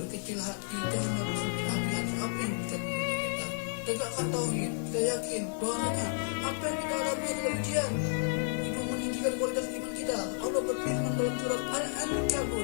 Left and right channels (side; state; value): right; silent; digital silence